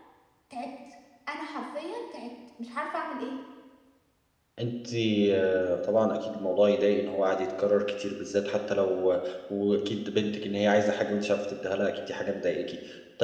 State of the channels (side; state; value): both; identical; correlation 1.00